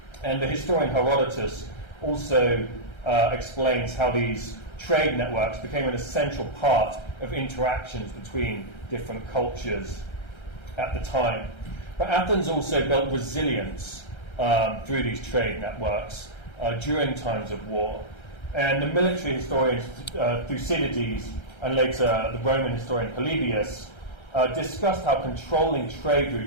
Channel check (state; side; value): late; right; 1.3 ms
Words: And the historian Herodotus also explains how these trade networks became an essential part of interactions between different cultures at the time. But Athens also built resilience through these trade networks during times of war. And the military historian Thucydides, and later the Roman historian Polybius, discussed how controlling trade